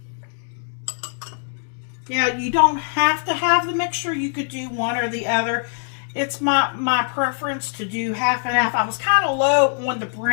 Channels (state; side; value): silent; right; digital silence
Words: Yeah, you don't have to have the mixture. You could do one or the other. It's my preference to do half and half. I was kind of low on the